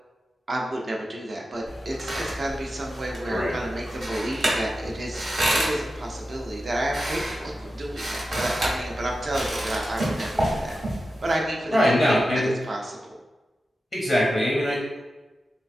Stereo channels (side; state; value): both; normal; correlation 0.92